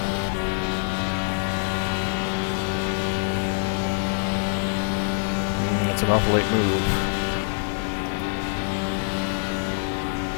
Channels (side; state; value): right; silent; digital silence